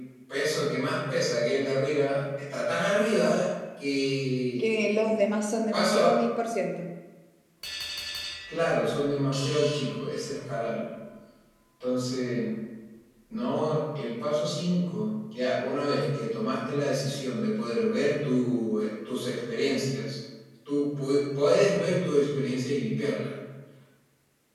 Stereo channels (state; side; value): identical; both; correlation 1.00